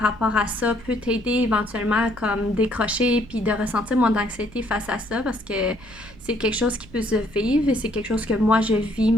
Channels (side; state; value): right; noise; rumble, 21 dB below the sound